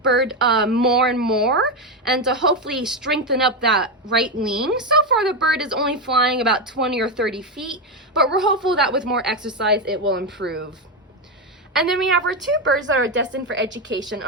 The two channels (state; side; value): normal; both; correlation 0.10